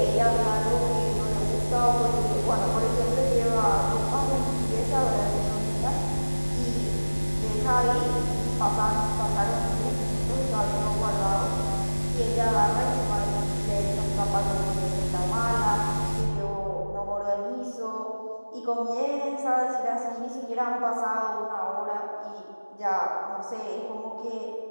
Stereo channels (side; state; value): both; inverted; correlation -1.00